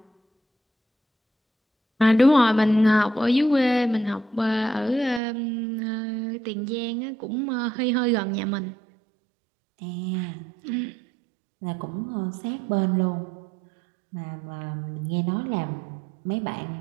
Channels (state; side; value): drops out; left; at 5.2 s